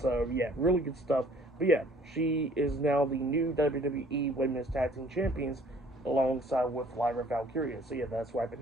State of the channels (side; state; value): both; normal; correlation 0.56